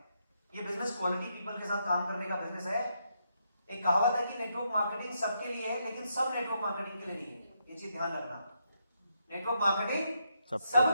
ये बिजनेस क्वालिटी पीपल के साथ काम करने का बिजनेस है। एक कहावत है कि नेटवर्क मार्केटिंग सबके लिए है, लेकिन सब नेटवर्क मार्केटिंग के लिए नहीं है। ये चीज ध्यान रखना, नेटवर्क मार्केटिंग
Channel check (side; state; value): both; inverted; correlation -0.79